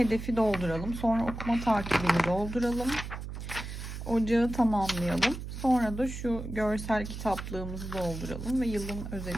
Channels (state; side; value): noise; right; hum, 8 dB below the sound